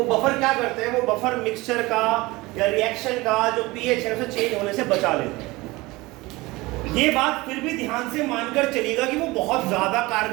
बफर क्या करते हैं, वो बफर मिक्सचर का या रिएक्शन का जो pH है उसे चेंज होने से बचा लेते हैं। ये बात फिर भी ध्यान से मानकर चलिएगा कि वो बहुत ज्यादा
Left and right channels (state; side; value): quieter; left; 21.5 dB